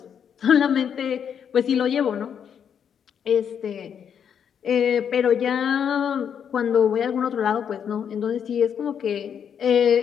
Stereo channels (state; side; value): quieter; right; 8.0 dB